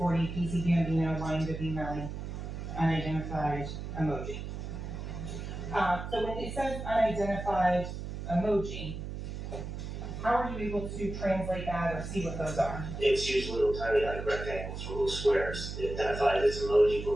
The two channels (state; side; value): noise; right; hum, 7 dB below the sound